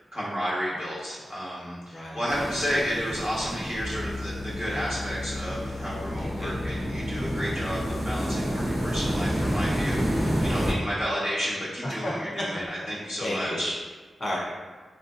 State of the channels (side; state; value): both; normal; correlation 0.93